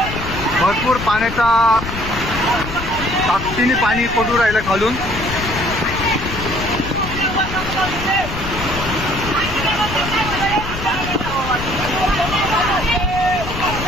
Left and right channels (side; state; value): left; noise; rumble, 8 dB below the sound